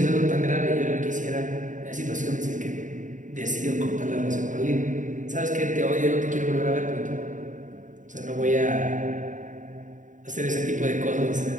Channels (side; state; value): left; late; 0.37 ms